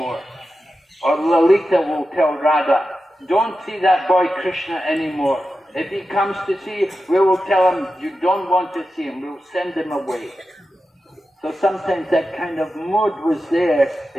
Or Lalita will tell Radha, "Don't see that boy Krishna anymore. If he comes to see you, we will tell him you don't want to see him. We'll send him away." So sometimes that kind of mood was there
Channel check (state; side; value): normal; both; correlation 0.91